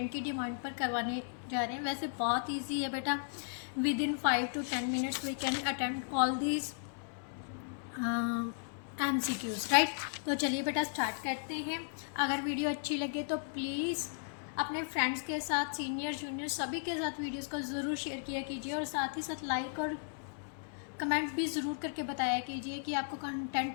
की डिमांड पर करवाने जा रहे हैं। वैसे बहुत इजी है बेटा, within 5 to 10 minutes we can attempt all this MCQs, right. तो चलिए बेटा स्टार्ट करते हैं। अगर वीडियो अच्छी लगे तो प्लीज़ अपने फ्रेंड्स के साथ, सीनियर जूनियर सभी के साथ वीडियोस को ज़रूर शेयर किया कीजिए, और साथ ही साथ लाइक और कमेंट भी ज़रूर करके बताया कीजिए कि आपको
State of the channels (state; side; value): silent; right; 54 dB below the other